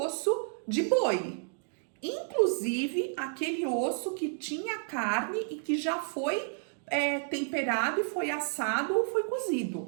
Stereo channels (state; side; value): silent; left; 57 dB below the other